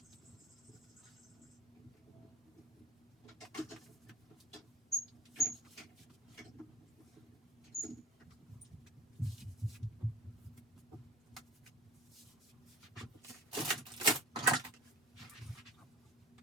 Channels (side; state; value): both; normal; correlation 0.40